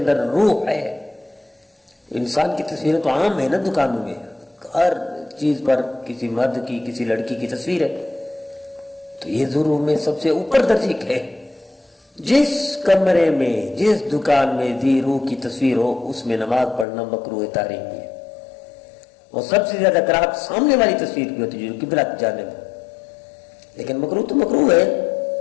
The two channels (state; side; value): drops out; right; at 16.9 s